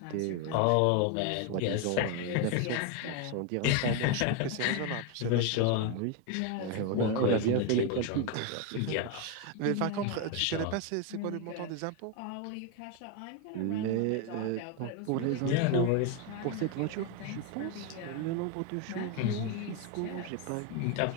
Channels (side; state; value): both; different; correlation 0.02